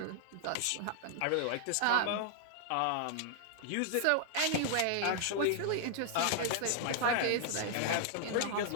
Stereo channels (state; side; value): different; both; correlation -0.01